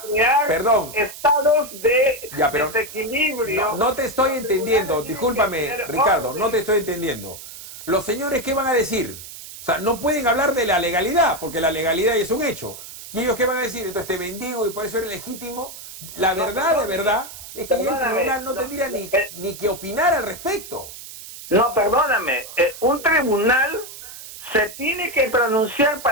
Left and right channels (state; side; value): noise; right; hiss, 14 dB below the sound